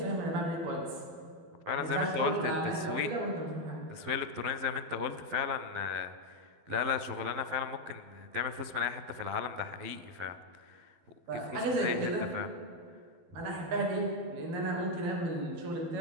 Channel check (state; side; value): late; left; 12 ms